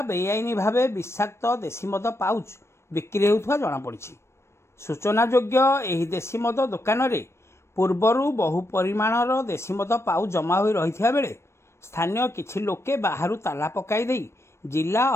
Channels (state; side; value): late; right; 0.13 ms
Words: बेआईनी भावे विषाक्त देशी मद पाउच बिक्री हेउथबा जणा पड़िछि। सूचना योग्य एही देशी मद दुकान रे पूर्वरू बहु परिमाणर देशी मद पाउच जमा होई रहिथिया बेले स्थानीय किछि लोके बाहरु ताला पकाई देई जिला